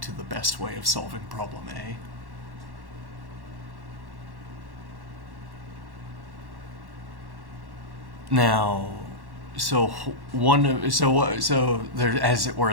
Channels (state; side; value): late; left; 1.1 ms